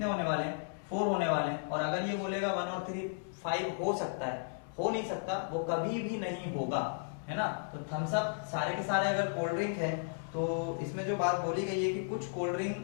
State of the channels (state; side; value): silent; right; digital silence